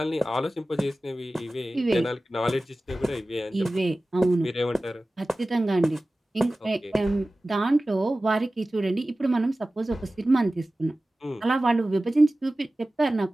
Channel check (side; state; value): both; normal; correlation 0.96